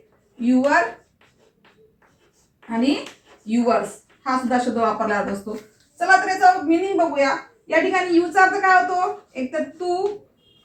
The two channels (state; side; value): identical; both; correlation 1.00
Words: युअर आणि युअर्स हा सुद्धा शब्द वापरला जात असतो. चला तर याचा मिनिंग बघूया. या ठिकाणी यूचा अर्थ काय होतो? एक तर तू,